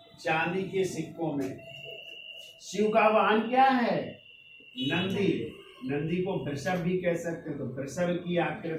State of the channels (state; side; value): identical; both; correlation 1.00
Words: सिक्कों में शिव का वाहन क्या है? नंदी। नंदी को वृषभ भी कह सकते हैं, तो वृषभ की